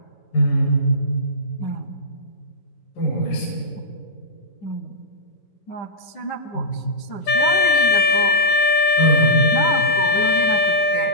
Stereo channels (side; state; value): right; late; 10 ms